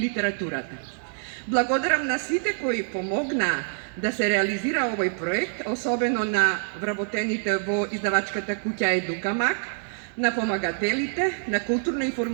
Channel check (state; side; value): silent; left; digital silence